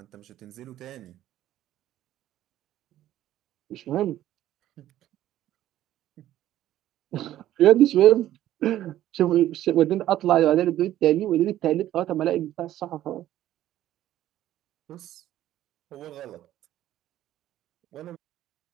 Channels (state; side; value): quieter; left; 13.1 dB